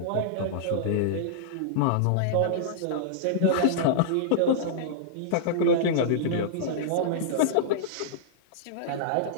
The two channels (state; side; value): different; both; correlation -0.02